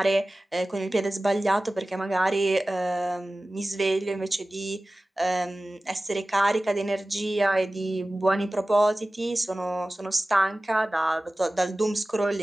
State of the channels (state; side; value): normal; both; correlation 0.97